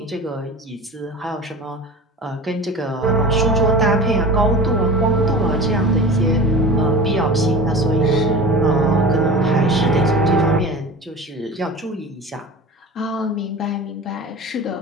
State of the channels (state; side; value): normal; both; correlation 0.36